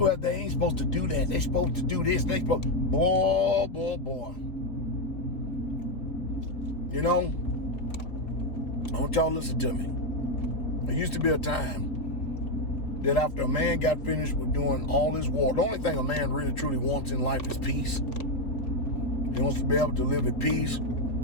they ain't supposed to do that. They supposed to do this. They supposed, boy. You know, I want y'all to listen to me. There used to be a time that after a man got finished with doing all his war, the only thing a man really truly wants in life is peace. He wants to be able to live at peace.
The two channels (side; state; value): right; late; 3.5 ms